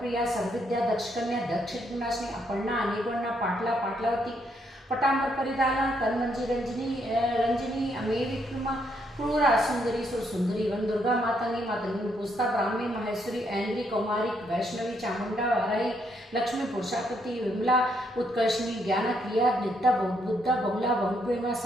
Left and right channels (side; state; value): both; normal; correlation 0.74